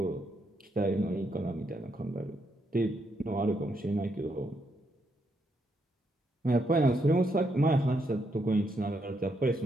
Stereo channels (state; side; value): normal; both; correlation 0.78